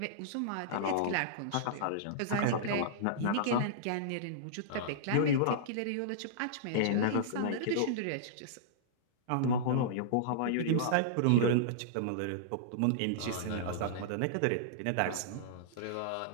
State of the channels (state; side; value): different; both; correlation -0.02